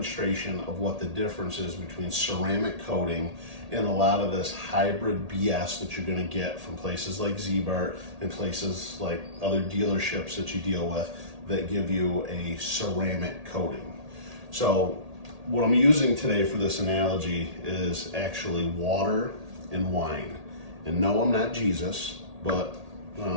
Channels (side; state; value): left; late; 1.8 ms